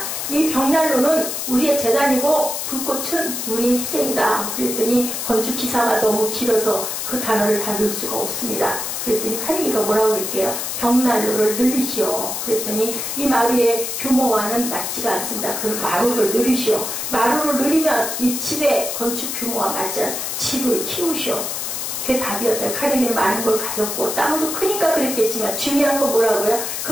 이 벽난로는 우리의 재단이고 불꽃은 우리의 희생이다. 그랬더니 건축기사가 너무 길어서 그 단어를 다 넣을 수가 없습니다. 그랬더니 카네기가 뭐라고 그럴게요? 벽난로를 늘리시오. 그랬더니 이 마루의 규모와는 맞지가 않습니다. 그럼 마루를 늘리시오. 마루를 늘리면 이 집의 건축 규모와 맞지 않은 집을 키우시오. 그게 답이었다. 카네기는 많은 걸 가졌고 땅도 크니까 그랬겠지만 중요한 건 뭐라고요?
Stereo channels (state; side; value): noise; left; hiss, 4 dB below the sound